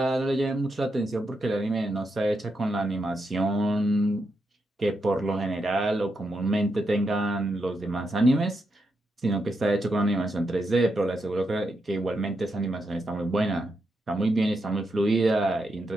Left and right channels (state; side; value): normal; both; correlation 0.83